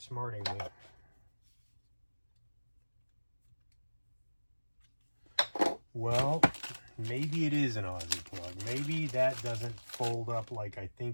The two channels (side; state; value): both; inverted; correlation -1.00